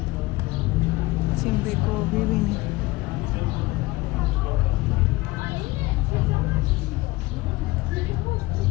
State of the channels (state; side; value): quieter; right; 20.5 dB